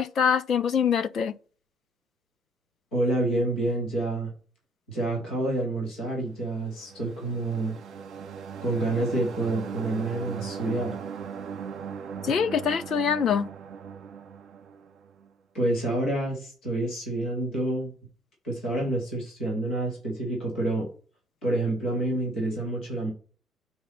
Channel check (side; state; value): both; normal; correlation 0.58